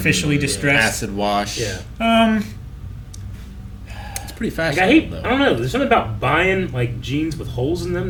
distressed. Acid wash. Yeah. It's pretty Like, I fashionable hate. though. I don't know. There's something about buying like jeans with holes in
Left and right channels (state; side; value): identical; both; correlation 1.00